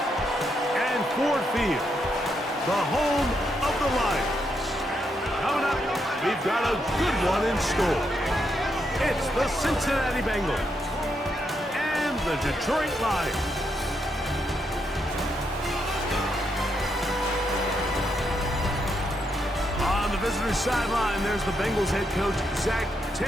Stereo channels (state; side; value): normal; both; correlation 0.80